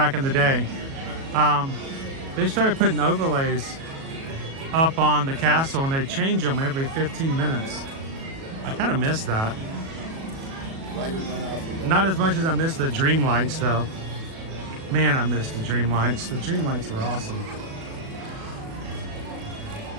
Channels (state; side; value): late; left; 37 ms